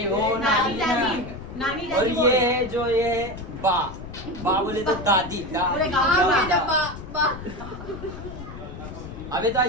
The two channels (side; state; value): left; noise; rumble, 11 dB below the sound